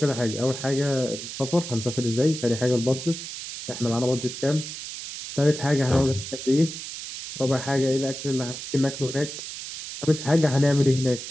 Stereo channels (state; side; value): noise; right; hiss, 9 dB below the sound